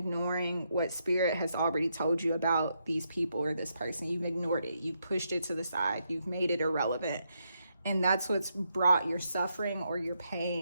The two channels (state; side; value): inverted; both; correlation -0.80